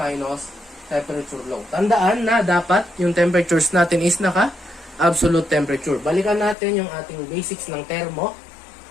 temperature low. Tandaan na dapat yung temperatures natin is naka-absolute temperature. Balikan natin yung ating basics ng thermo.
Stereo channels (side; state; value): right; drops out; at 6.6 s